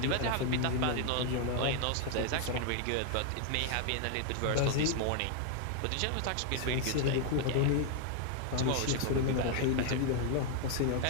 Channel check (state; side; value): different; both; correlation 0.00